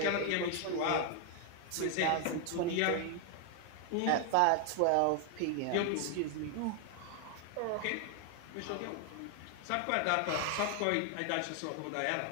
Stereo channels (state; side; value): different; both; correlation 0.00